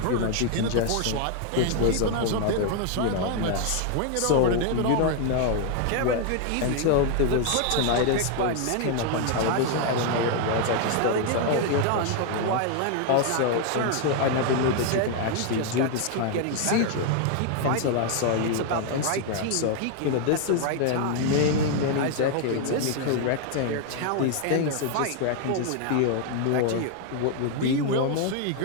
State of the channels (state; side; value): different; both; correlation 0.00